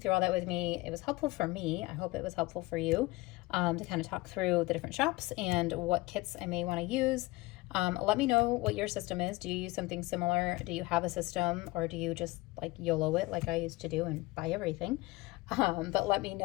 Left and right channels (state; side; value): quieter; right; 21.3 dB